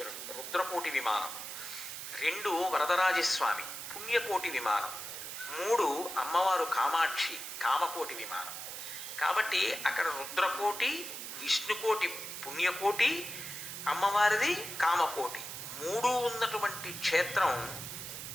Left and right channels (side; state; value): right; noise; hiss, 8 dB below the sound